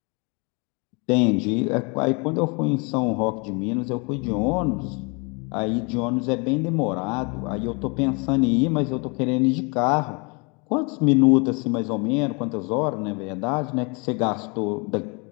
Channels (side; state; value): right; quieter; 31.3 dB